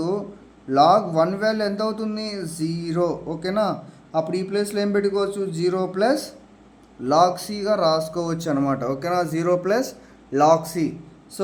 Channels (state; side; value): identical; both; correlation 1.00